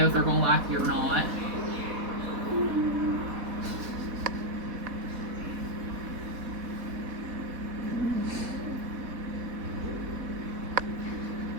if they're going to like you or not.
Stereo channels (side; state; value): left; late; 4.1 ms